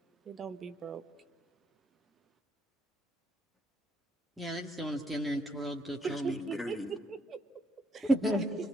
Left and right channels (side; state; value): both; normal; correlation 0.72